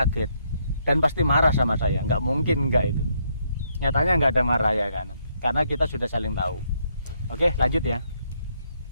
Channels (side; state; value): both; inverted; correlation -0.74